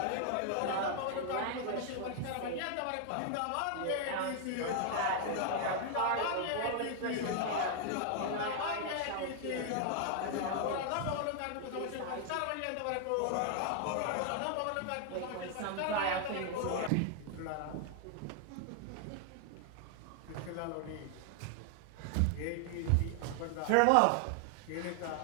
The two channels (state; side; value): different; both; correlation 0.00